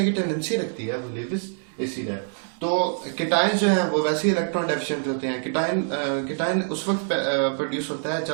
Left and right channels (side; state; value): left; silent; digital silence